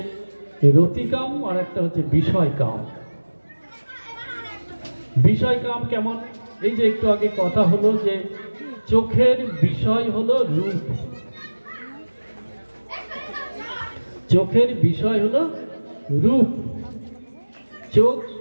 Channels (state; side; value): inverted; both; correlation -1.00